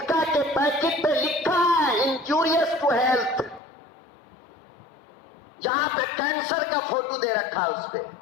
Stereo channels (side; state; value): right; drops out; at 3.6 s